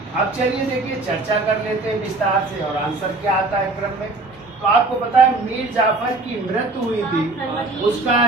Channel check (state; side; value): quieter; left; 3.2 dB